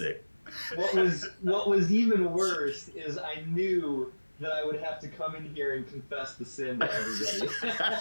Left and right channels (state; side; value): inverted; both; correlation -1.00